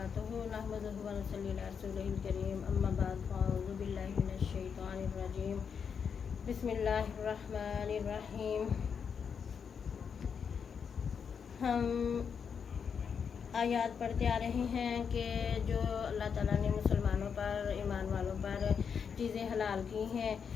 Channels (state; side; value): quieter; right; 6.7 dB